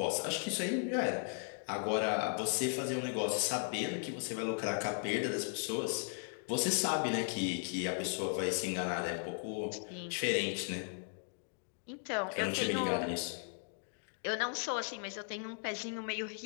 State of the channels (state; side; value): silent; right; 53 dB below the other